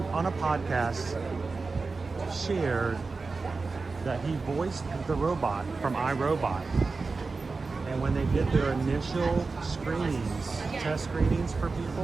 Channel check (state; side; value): quieter; left; 4.1 dB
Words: a podcast shared that he voiced the robot from iRobot. And when they did their initial screenings, test screenings for